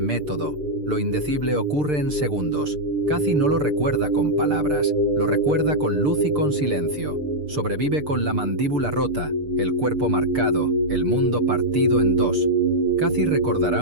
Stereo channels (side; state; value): left; late; 6.7 ms